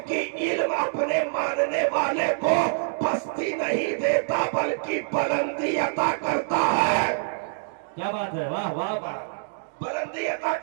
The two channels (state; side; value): silent; left; digital silence